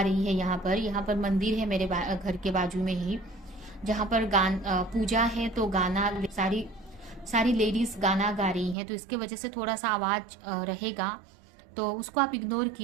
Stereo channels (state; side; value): drops out; left; at 8.8 s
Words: रही है। यहाँ पर मंदिर है मेरे घर के बाजू में ही, जहाँ पर पूजा है, तो गाना सारी सारी लेडीज गाना गा रही हैं, तो इसके वजह से थोड़ा सा आवाज रहेगा। तो उसको आप इग्नोर